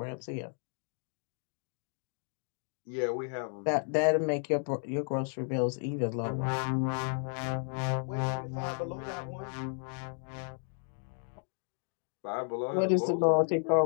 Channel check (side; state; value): right; silent; 56 dB below the other